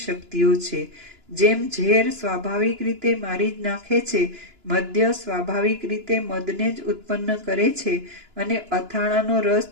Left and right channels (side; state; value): left; late; 2.9 ms